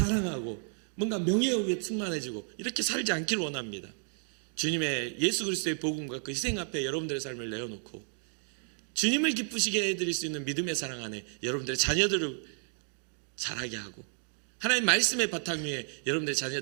뭔가 명예욕에 충만해지고 이렇게 살지 않기를 원합니다. 주님의 예수 그리스도의 복음과 그 희생 앞에 여러분들의 삶을 내어놓고 주님을 기쁘시게 해드릴 수 있는 믿음의 사랑 안에 여러분들의 자녀들을 자라게 하고 하나님 말씀의 바탕 위에 여러분들의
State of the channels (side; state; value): left; silent; 57 dB below the other